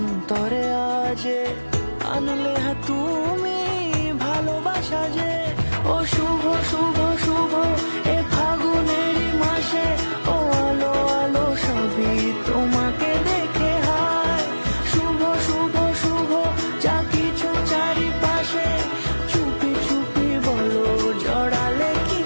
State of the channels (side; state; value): both; inverted; correlation -1.00